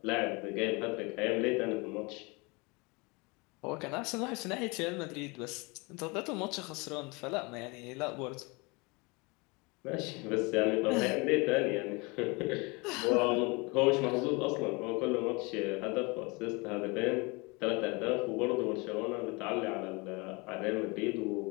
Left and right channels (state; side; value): quieter; right; 27.6 dB